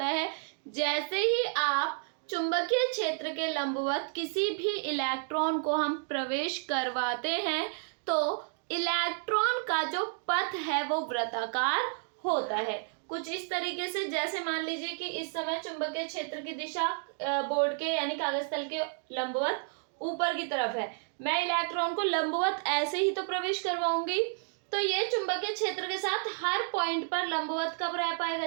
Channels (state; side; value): silent; left; 57 dB below the other